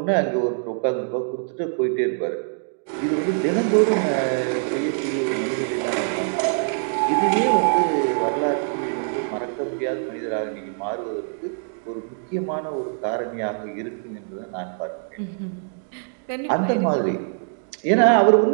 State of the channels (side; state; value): left; silent; digital silence